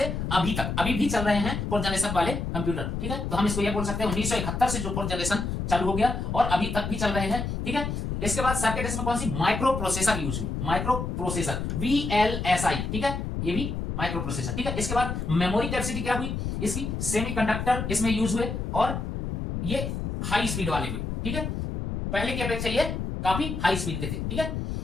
अभी तक, अभी भी चल रहे हैं फोर्थ जनरेशन वाले कंप्यूटर। ठीक है, तो हम इसको ये बोल सकते हैं 1971 से जो फोर्थ जनरेशन चालू हो गया और अभी तक भी चल रहे हैं। ठीक है, इसके बाद सर्किट इसमें कौन सी, माइक्रो प्रोसेसर यूज हुई, माइक्रो प्रोसेसर VLSI। ठीक है, ये भी माइक्रो प्रोसेसर। ठीक है, इसके बाद मेमोरी कैपेसिटी क्या हुई, इसकी सेमीकंडक्टर इसमें यूज हुए और ये हाई स्पीड वाले हुए। ठीक है, पहले की अपेक्षा ये काफी हाई स्पीड के थे। ठीक है,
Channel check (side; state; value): left; noise; rumble, 3 dB below the sound